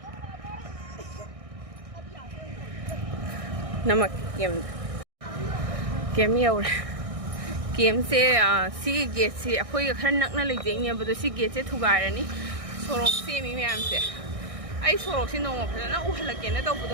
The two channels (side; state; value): left; late; 1.6 ms